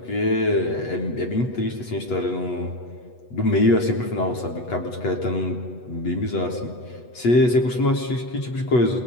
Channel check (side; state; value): right; late; 8.2 ms